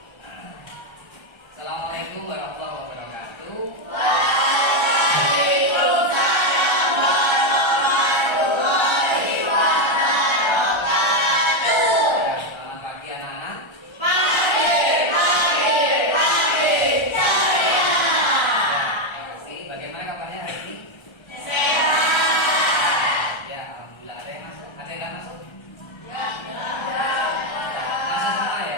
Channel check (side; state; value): right; late; 1.3 ms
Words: Assalamualaikum warahmatullahi wabarakatuh. Waalaikumsalam warahmatullahi wabarakatuh. Selamat pagi anak-anak. Pagi ceria. Bagaimana kabarnya hari ini? Sehat. Ya, alhamdulillah. Ada yang masuk? Ada yang nggak masuk? Masuk Semua ya?